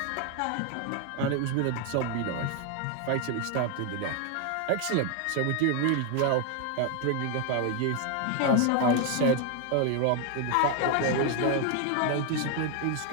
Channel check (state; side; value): different; both; correlation 0.01